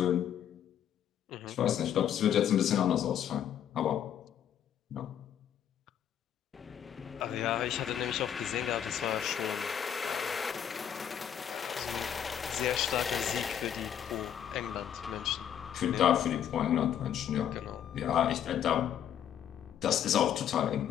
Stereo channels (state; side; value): quieter; right; 9.6 dB